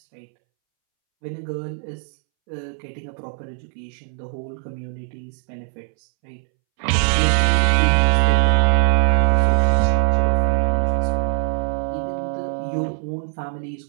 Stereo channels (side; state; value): left; silent; 65 dB below the other